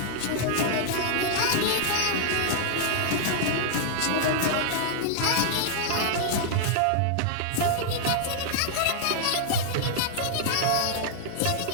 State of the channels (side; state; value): both; different; correlation -0.01